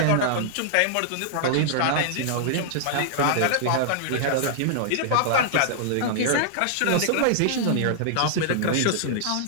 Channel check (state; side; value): different; both; correlation -0.01